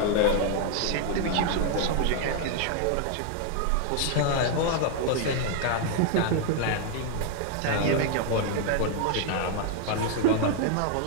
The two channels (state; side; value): different; both; correlation 0.00